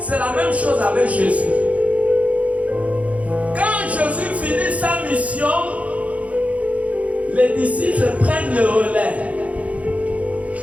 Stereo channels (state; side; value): late; left; 0.067 ms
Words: la même chose avec Jésus. Quand Jésus finit sa mission, les disciples prennent le relais.